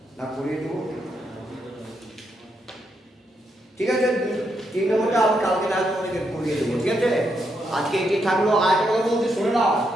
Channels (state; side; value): normal; both; correlation 0.80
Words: না, করিয়ে দেবো, ঠিক আছে? 3 নম্বরটা আমি কালকে রাত তোমাদেরকে করিয়ে দেবো, ঠিক আছে? আজকে এটি থাকলো। আর একটা কথা বলতে শুনে নাও,